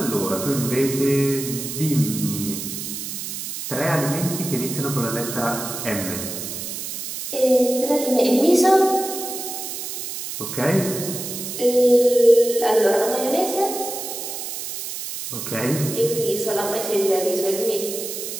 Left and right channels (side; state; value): right; noise; hiss, 7 dB below the sound